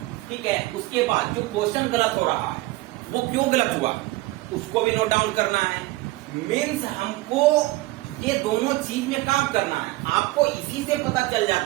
ठीक है, उसके बाद जो क्वेश्चन गलत हो रहा है वो क्यों गलत हुआ, उसको भी नोट डाउन करना है। मीन्स हमको ये दोनों चीज में काम करना है। आपको इसी से पता चल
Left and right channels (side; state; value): left; quieter; 19.6 dB